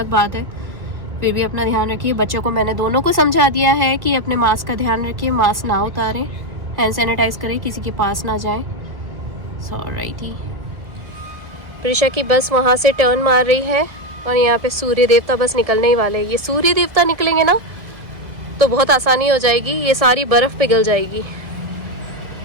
बात है, फिर भी अपना ध्यान रखिए। बच्चों को मैंने दोनों को समझा दिया है कि अपने मास्क का ध्यान रखिए, मास्क ना उतारें, हैंड सैनिटाइज करें, किसी के पास ना जाएं। ऑलराइटी, प्रिशा की बस वहाँ से टर्न मार रही है और यहाँ पे सूर्य देवता बस निकलने ही वाले हैं। ये सूर्य देवता निकलेंगे ना तो बहुत आसानी हो जाएगी, ये सारी बर्फ पिघल जाएगी।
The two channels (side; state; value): left; late; 1.7 ms